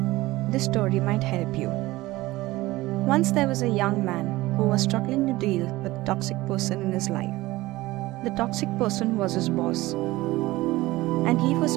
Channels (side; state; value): left; quieter; 18.8 dB